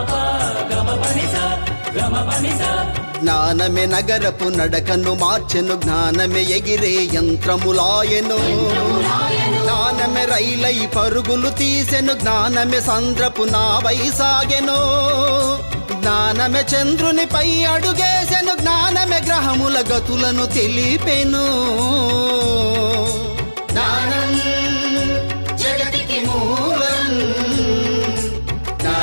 గమ పని స గమ పని స. జ్ఞానమే నగరపు నడకను మార్చెను, జ్ఞానమే ఎగిరే యంత్రములాయెను, జ్ఞానమే రైలై పరుగులు తీసెను, జ్ఞానమే సంద్రపు నావై సాగెను, జ్ఞానమే చంద్రునిపై అడుగేసెను, జ్ఞానమే గ్రహముల గతులను తెలిపెను. జ్ఞానం జగతికి మూలం,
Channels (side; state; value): both; inverted; correlation -1.00